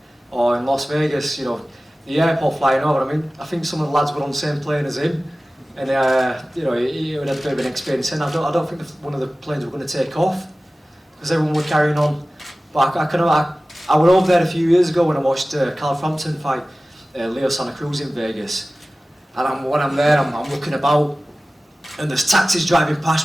or in Las Vegas? You know, the airport flying over. I mean, I think some of the lads were on the same plane as him, and you know, he had a bit of an experience. And I don't think one of the planes were going to take off because everyone were carrying on. But I went over there a few years ago when I watched Carl Frampton fight Leo Santa Cruz in Vegas, and when I'm there, I'm looking about, and there's taxis driving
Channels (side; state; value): both; normal; correlation 0.97